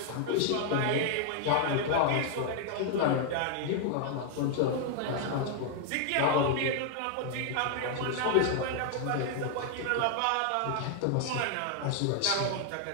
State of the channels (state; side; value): different; both; correlation 0.00